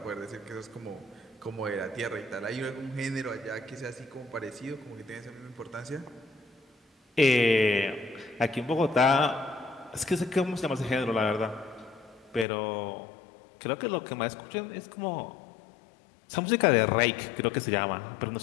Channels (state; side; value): drops out; right; at 12.5 s